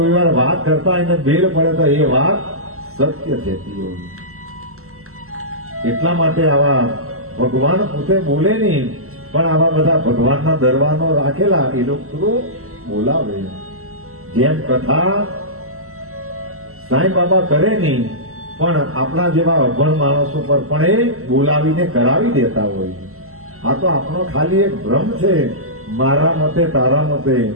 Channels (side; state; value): left; late; 0.63 ms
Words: વાર વાત કરતા એને બેલ પડે તો એ વાત સત્ય થતી હોય. એટલા માટે આવા ભગવાન પોતે બોલે નહીં, પણ આવા બધા ભગવાનના દરવાનો રાખેલા એ લોકો બોલાવે. જેમ કથા સાંઈ બાબા કરે નહીં, પણ આપણા જેવા અભણ માણસો પર પણ એ બોલાવીને કરાવી દેતા હોય. આ તો આપણો ખાલી એક ભ્રમ છે. મારા મતે, તારા મતે